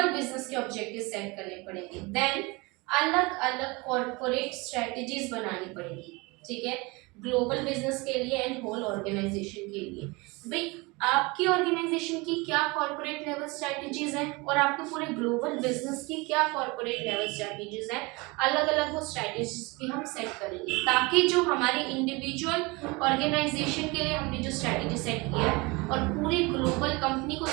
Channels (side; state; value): left; quieter; 25.6 dB